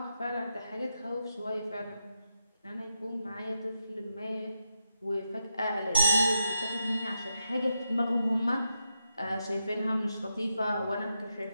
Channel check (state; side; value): inverted; both; correlation -0.84